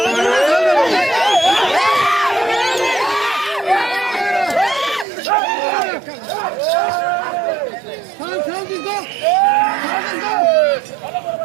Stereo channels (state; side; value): drops out; left; at 5.1 s